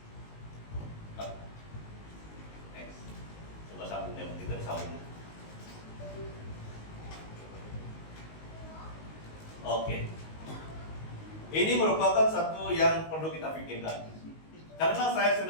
Next. Coba sambungnya, kita disambung. Oke. Ini merupakan satu yang perlu kita pikirkan. Karena saya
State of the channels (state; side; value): late; right; 19 ms